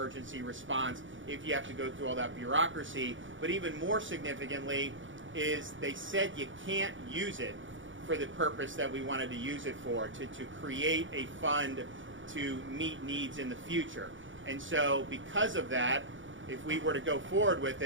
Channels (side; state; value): left; late; 0.56 ms